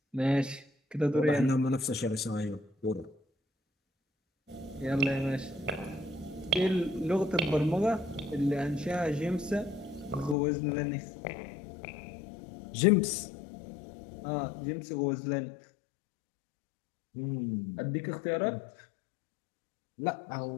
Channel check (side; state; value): right; drops out; at 10.4 s